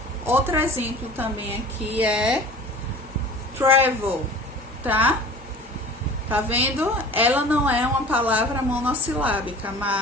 outro exemplo também aqui é travel, tá? Tá vendo? Ela não é uma palavra monossilábica,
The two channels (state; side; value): normal; both; correlation 0.41